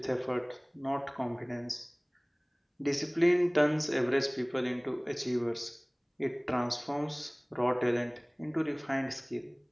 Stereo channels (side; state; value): both; identical; correlation 1.00